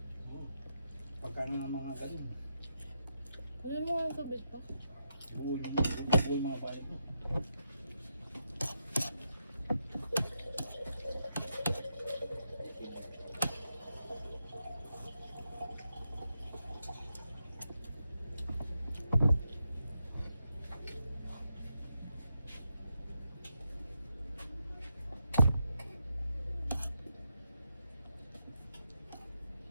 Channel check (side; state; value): both; inverted; correlation -0.84